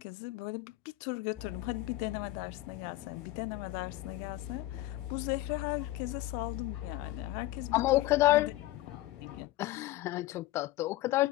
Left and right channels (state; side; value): quieter; right; 16.6 dB